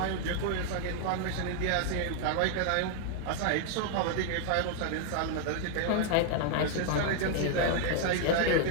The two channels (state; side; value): different; both; correlation 0.00